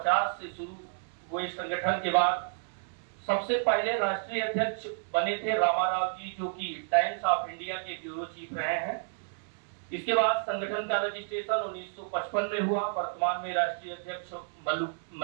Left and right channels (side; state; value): left; silent; digital silence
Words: से शुरू हुए संगठन के बाद सबसे पहले राष्ट्रीय अध्यक्ष बने थे रामाराव जी, जो कि टाइम्स ऑफ इंडिया के ब्यूरो चीफ रहे हैं। इसके बाद संगठन का रजिस्ट्रेशन 1955 में हुआ। वर्तमान में राष्ट्रीय अध्यक्ष